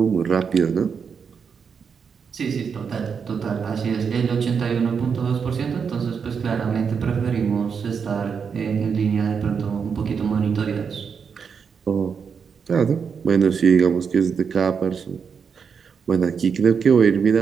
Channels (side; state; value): left; quieter; 6.3 dB